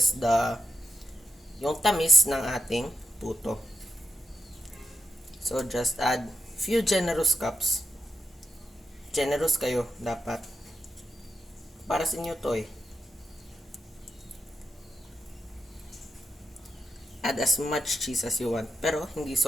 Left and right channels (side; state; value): both; normal; correlation 0.85